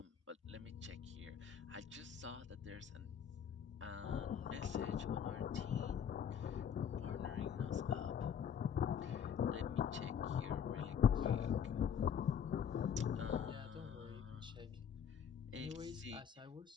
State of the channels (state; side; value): quieter; right; 8.0 dB